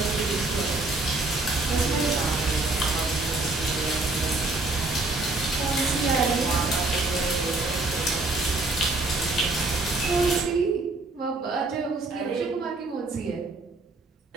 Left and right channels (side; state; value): left; quieter; 3.2 dB